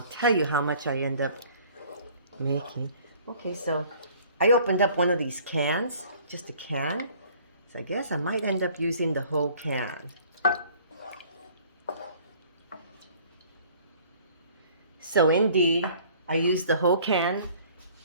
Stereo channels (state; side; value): inverted; both; correlation -0.53